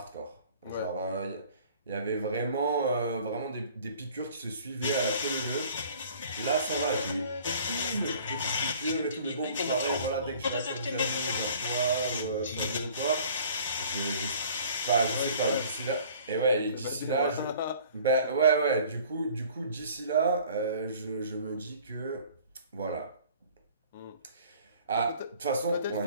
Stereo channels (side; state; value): both; inverted; correlation -0.51